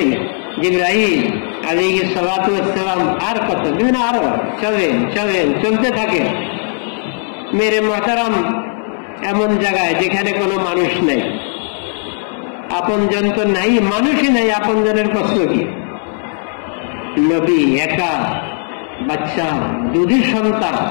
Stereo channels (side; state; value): right; silent; 66 dB below the other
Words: জিবরাইল আলাইহিস সালাতু ওয়াস সালাম আর কত দিন, আরো চলেন চলেন, চলতে থাকেন। মেরে মুহতারাম এমন জায়গায় যেখানে কোনো মানুষ নেই, আপনজন তো নাই, মানুষই নাই, আপনজনের প্রশ্ন কি? নবী একা, বাচ্চা, দুধের সন্তান।